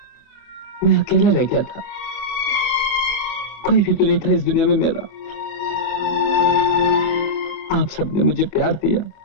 मैं अकेला रह गया था। कोई भी तो नहीं था इस दुनिया में मेरा। आप सबने मुझे प्यार दिया,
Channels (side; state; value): right; late; 24 ms